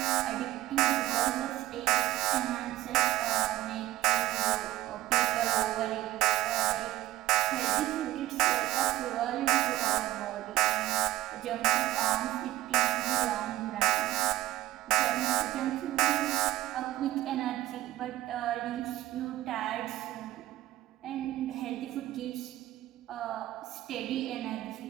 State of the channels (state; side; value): quieter; left; 16.0 dB